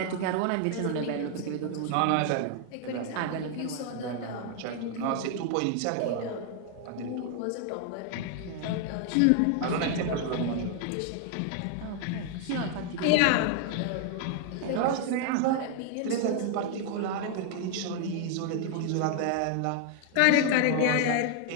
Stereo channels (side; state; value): both; different; correlation 0.00